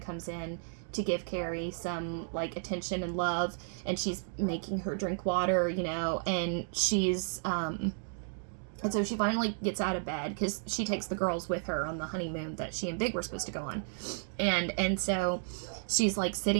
in to give Carrie some, like, attention and love, and she's making her drink water, you know, and and so she finally gets out of bed because she takes the girls with her on the honeymoon that she and Big were supposed to go on, and so she's like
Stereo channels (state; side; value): silent; left; digital silence